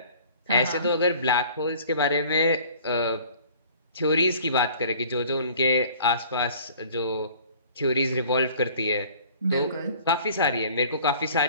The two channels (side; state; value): both; inverted; correlation -0.50